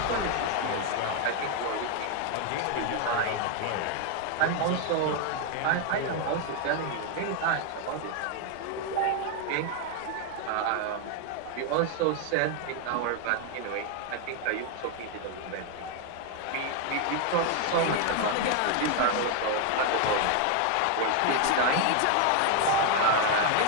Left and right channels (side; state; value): both; different; correlation 0.01